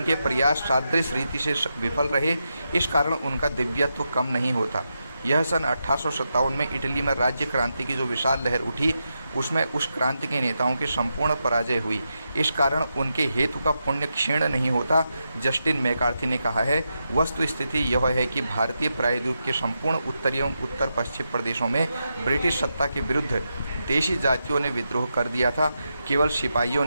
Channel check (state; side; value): inverted; both; correlation -0.87